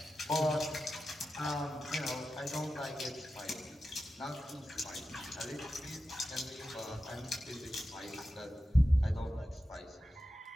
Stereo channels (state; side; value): normal; both; correlation 0.92